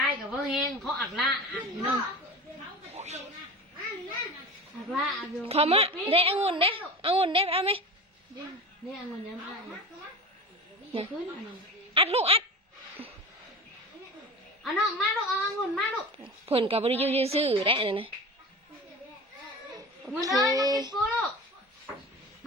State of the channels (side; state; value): both; normal; correlation 0.34